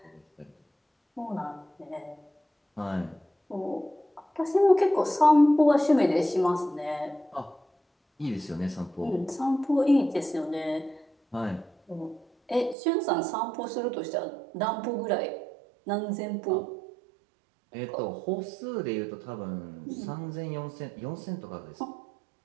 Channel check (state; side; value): drops out; left; at 12.8 s